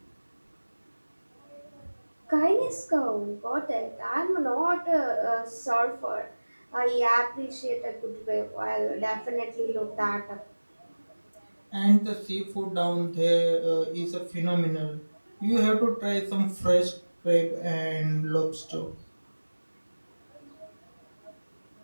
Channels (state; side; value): inverted; both; correlation -1.00